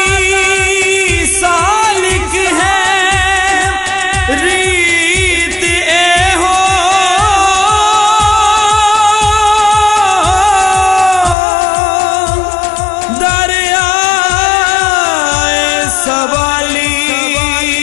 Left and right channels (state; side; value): drops out; right; at 11.4 s